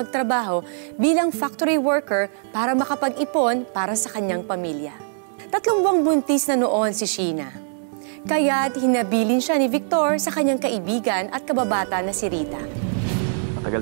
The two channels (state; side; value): silent; left; 62 dB below the other